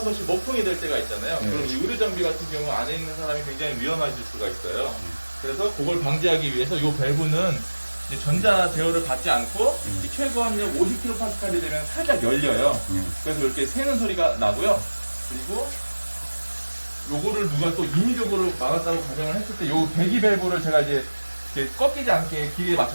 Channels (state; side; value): inverted; both; correlation -1.00